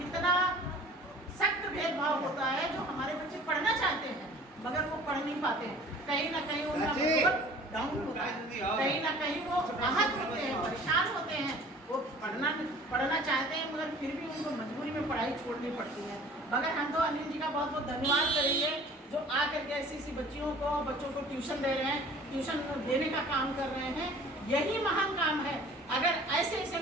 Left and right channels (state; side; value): normal; both; correlation 0.48